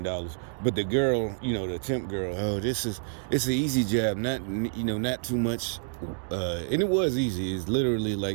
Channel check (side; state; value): left; silent; digital silence